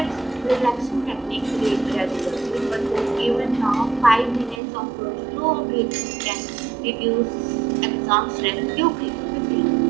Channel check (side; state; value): left; drops out; at 4.6 s